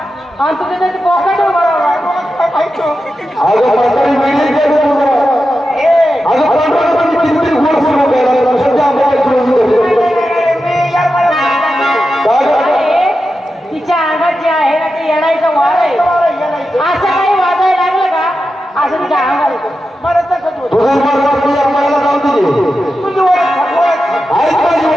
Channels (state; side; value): normal; both; correlation 0.90